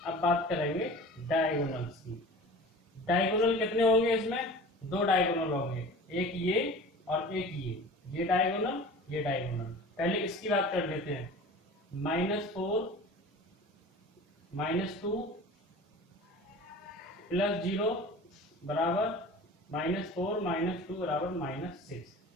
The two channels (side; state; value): both; normal; correlation 0.39